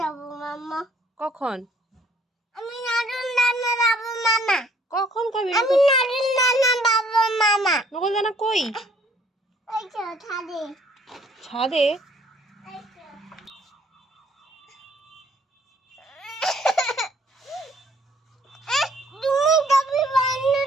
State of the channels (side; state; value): both; normal; correlation 0.61